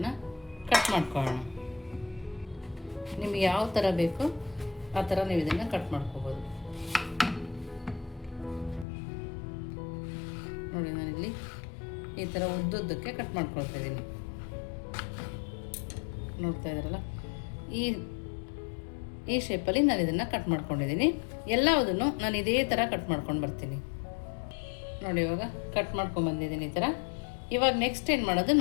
ಕಟ್ ಮಾಡ್ಕೊಳ್ಳೋಣ. ನಿಮಗೆ ಯಾವ ಥರ ಬೇಕು ಆ ಥರ ನೀವು ಇದನ್ನು ಕಟ್ ಮಾಡ್ಕೋಬೋದು. ನೋಡಿ, ನಾನಿಲ್ಲಿ ಈ ಥರ ಉದ್ದುದ್ದಕ್ಕೆ ಕಟ್ ಮಾಡ್ಕೊಳ್ತಾ ಇದ್ದೀನಿ. ನೋಡ್ತಾ ಇದ್ದೀರಲ್ಲ, ಈ ಶೇಪಲ್ಲಿ ನಾನು ಇದನ್ನು ಕಟ್ ಮಾಡ್ಕೊಂಡಿದ್ದೀನಿ. ಎಲ್ಲದನ್ನು ನಾನು ಇದೇ ಥರ ಕಟ್ ಮಾಡ್ಕೊಂಡು ಬರ್ತೀನಿ. ನೋಡಿ, ಇವಾಗ ಕಟ್ ಮಾಡ್ಕೊಂಬಂದಿದ್ದೀನಿ ಈ ಥರ. ಇವಾಗ ನೆಕ್ಸ್ಟ್ ಏನು ಮಾಡೋದು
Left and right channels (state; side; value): drops out; right; at 8.8 s